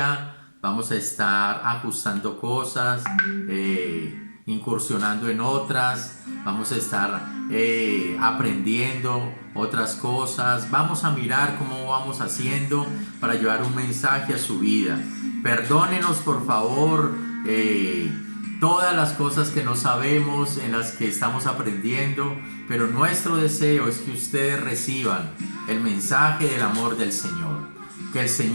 Vamos a estar ajustando cosas, incursionando en otras. Vamos a estar aprendiendo otras cosas. Vamos a mirar cómo vamos haciendo para llevar un mensaje a su vida. Perdónenos, por favor, todas las cosas que no sabemos, en las que estamos aprendiendo, pero nuestro deseo es que ustedes reciban el mensaje del amor del Señor. Que el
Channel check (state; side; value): inverted; both; correlation -1.00